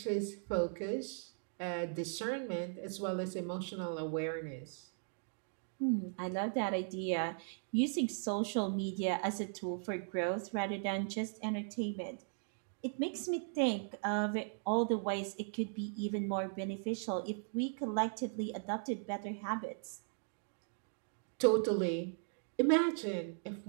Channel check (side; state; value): left; silent; digital silence